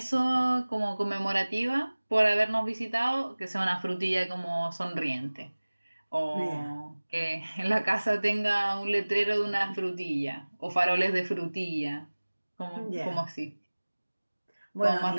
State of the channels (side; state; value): both; inverted; correlation -1.00